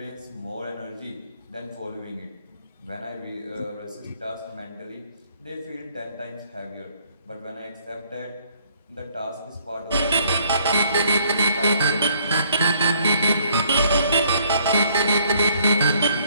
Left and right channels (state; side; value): inverted; both; correlation -0.64